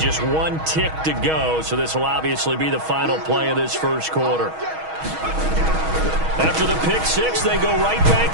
one tick to go, so this will obviously be the final play of this first quarter. After the pick six, they go right back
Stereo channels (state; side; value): late; left; 6.3 ms